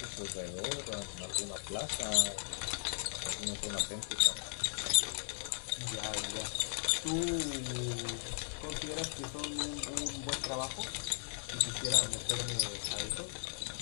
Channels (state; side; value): silent; right; 53 dB below the other